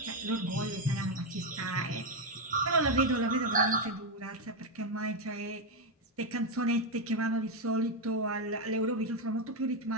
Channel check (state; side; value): normal; both; correlation 0.05